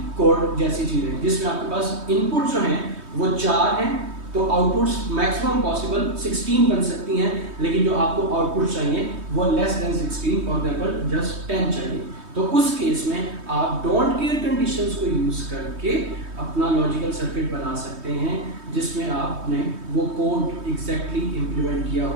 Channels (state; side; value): late; left; 3.2 ms